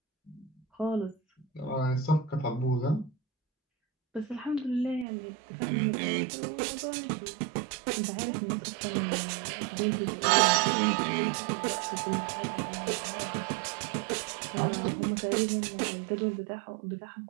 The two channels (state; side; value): drops out; left; at 5.1 s